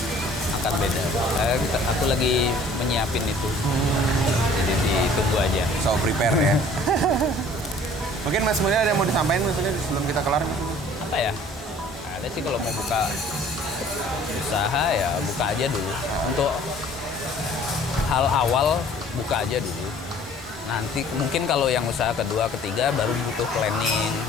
akan beda. Aku lagi menyiapin itu. Jadi ditunggu aja. So prepare ya. Mungkin Mas Mulya ada yang mau disampaikan maksudnya sebelum kita kelar? Apa ya? Ada sih kalau mau buka usaha ya buka aja dulu. Untuk hal awal buka aja dulu. Nanti mungkin kalau yang usaha kedua, ketiga baru butuh planning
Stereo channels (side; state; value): both; normal; correlation 0.53